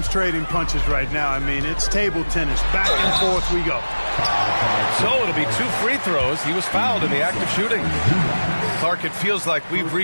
trading punches right now. I mean, it's table tennis. Back and forth we go. So it'll be 2 free throws. He was fouled in the act of shooting. Clark, it feels like we've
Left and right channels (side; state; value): both; inverted; correlation -1.00